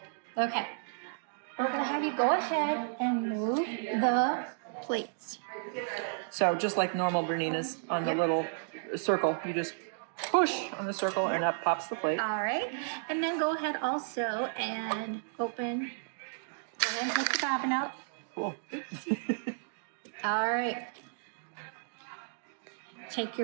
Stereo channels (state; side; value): silent; left; digital silence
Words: Okay. We're going to have you go ahead and move the plates. So just like normal Bernina's on the little circle, you just push on the circle and up pops the plate. All right. And then go ahead also and open and take the bobbin out. Cool. All right. Take